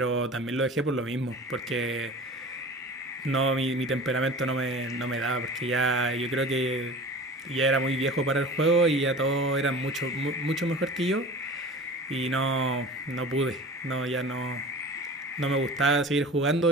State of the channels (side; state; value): both; normal; correlation 0.38